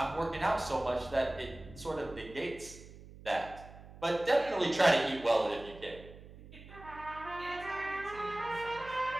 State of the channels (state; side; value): noise; right; hum, 18 dB below the sound